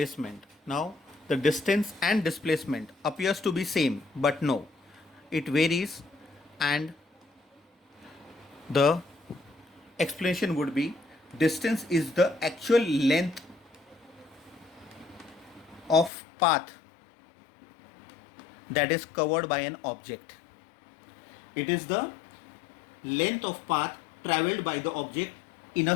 Now the distance and displacement appears to be same, but no, it varies, and the explanation would be: distance is the actual length of path that is covered by an object. It is the length of path traveled by the object in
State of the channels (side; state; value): right; drops out; at 16.1 s